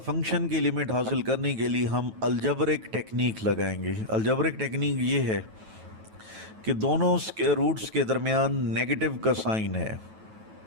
की लिमिट हासिल करने के लिए हम अलजबरिक टेक्निक लगाएंगे। अलजबरिक टेक्निक ये है कि दोनों स्क्वायर रूट्स के दरमियान नेगेटिव का साइन है,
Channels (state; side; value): late; left; 9.2 ms